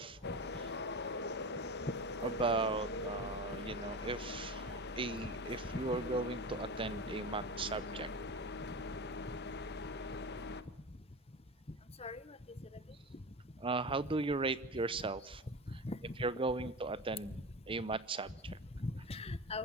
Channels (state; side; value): normal; both; correlation 0.26